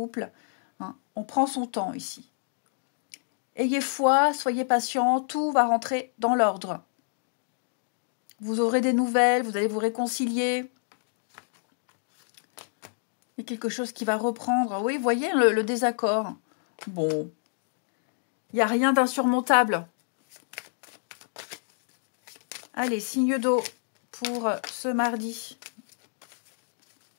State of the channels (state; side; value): silent; right; digital silence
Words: Hein. On prend son temps ici. Ayez foi, soyez patient, tout va rentrer dans l'ordre. Vous aurez des nouvelles, vous allez vous réconcilier. Il y a quelque chose qui va reprendre. Oui, vous voyez le désaccord. Bon, il n'y a rien d'insurmontable. Allez, signe d'eau pour ce mardi.